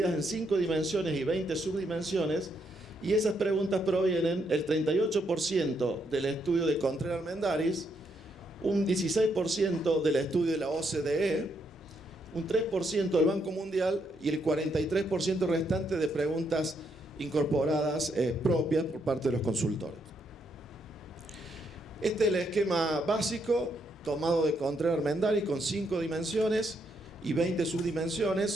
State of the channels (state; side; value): normal; both; correlation 0.76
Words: en 5 dimensiones y 20 subdimensiones, y esas preguntas provienen el 38% del estudio de Contreras Armendáriz, un 16% del estudio de la OCDE, un 3% del Banco Mundial y el 43% restante de preguntas incorporadas propias por parte de los consultores. Este es el esquema básico tomado de Contreras Armendáriz con 5 dimensiones y 20